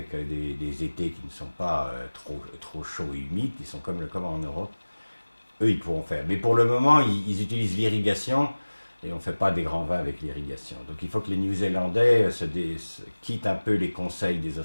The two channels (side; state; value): both; inverted; correlation -1.00